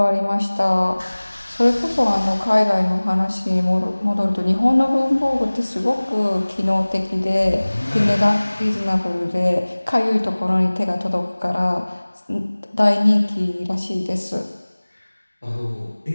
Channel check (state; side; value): inverted; both; correlation -1.00